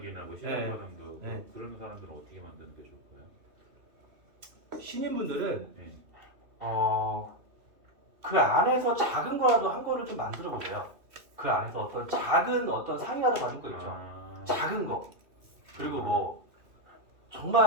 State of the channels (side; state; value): left; late; 2.7 ms